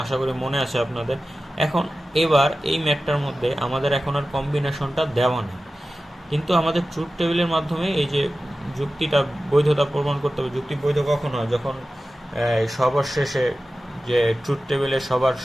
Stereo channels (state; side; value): normal; both; correlation 0.95